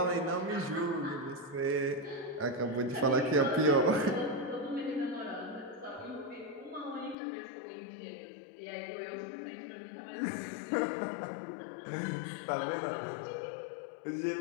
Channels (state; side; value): drops out; right; at 7.2 s